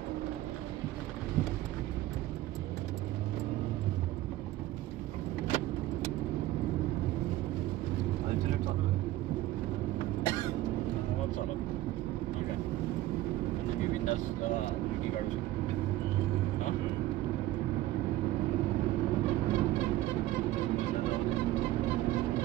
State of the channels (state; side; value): quieter; left; 15.5 dB